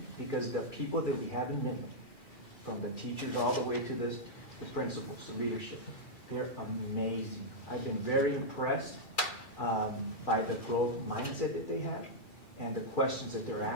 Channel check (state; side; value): late; right; 2.4 ms